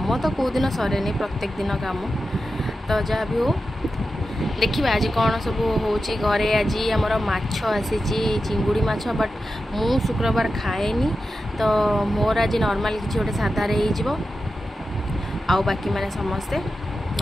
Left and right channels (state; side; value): normal; both; correlation 0.91